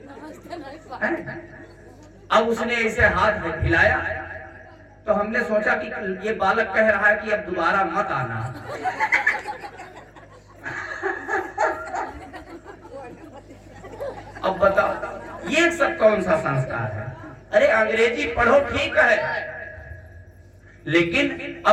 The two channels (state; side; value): identical; both; correlation 1.00